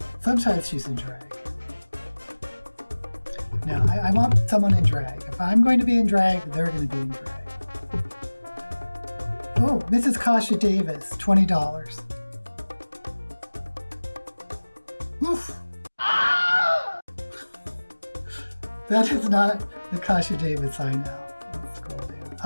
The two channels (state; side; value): inverted; both; correlation -1.00